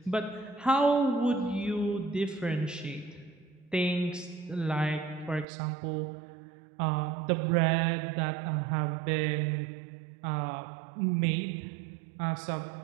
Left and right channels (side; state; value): left; drops out; at 5.5 s